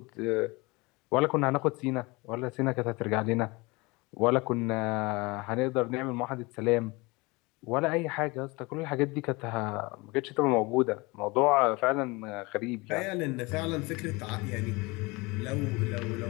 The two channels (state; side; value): quieter; right; 24.9 dB